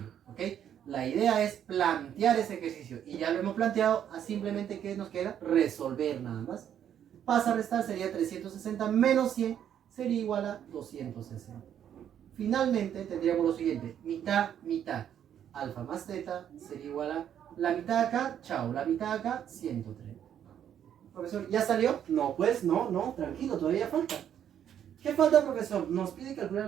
¿ok? La idea es plantear ese ejercicio. Y ya lo hemos planteado, simplemente ¿qué nos queda? Resolver nada más. Pasa a restar, sería 360 menos 100. Sería igual a 260. Finalmente tendríamos lo siguiente, mitad, mitad. Alfa más teta sería igual a la mitad acá, chao, la mitad acá, 130. Profesor, ¿ya salió? No, pues no, tranquilo, todavía falta. ¿Qué falta, profesor? Nos pide calcular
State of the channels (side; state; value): left; quieter; 9.6 dB